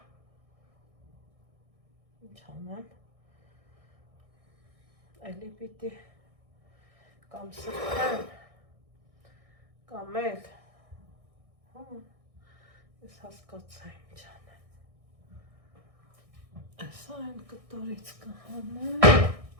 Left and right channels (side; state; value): left; late; 1.6 ms